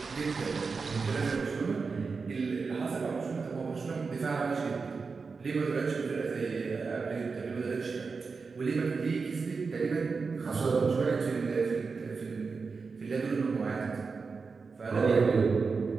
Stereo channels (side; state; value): left; quieter; 4.7 dB